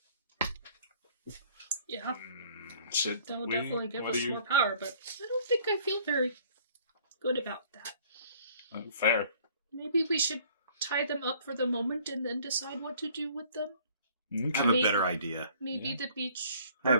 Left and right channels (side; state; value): both; inverted; correlation -0.56